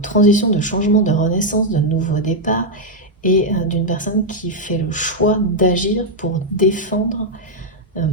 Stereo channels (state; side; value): normal; both; correlation -0.02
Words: de changement, de renaissance, de nouveau départ, et d'une personne qui fait le choix d'agir pour défendre euh,